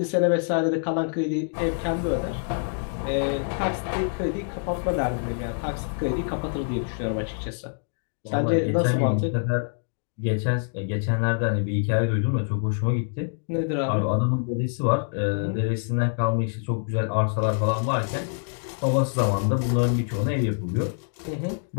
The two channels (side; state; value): right; silent; digital silence